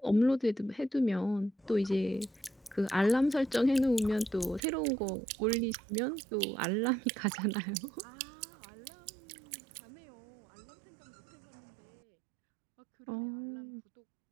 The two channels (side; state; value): left; drops out; at 4.6 s